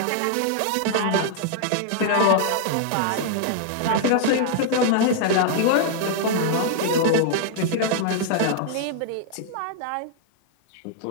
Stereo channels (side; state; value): both; different; correlation 0.00